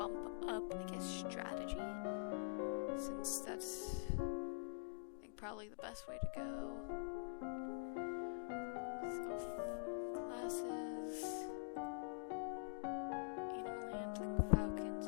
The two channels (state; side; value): silent; right; digital silence